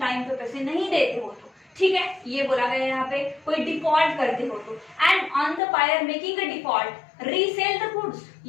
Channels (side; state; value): right; drops out; at 5.6 s